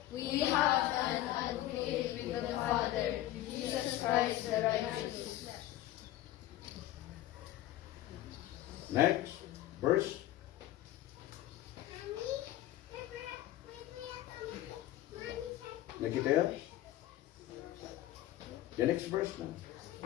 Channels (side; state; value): right; quieter; 14.4 dB